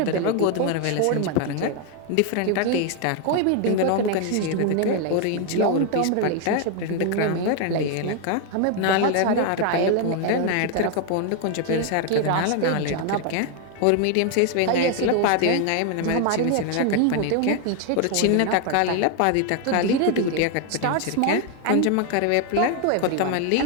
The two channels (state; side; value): different; both; correlation 0.01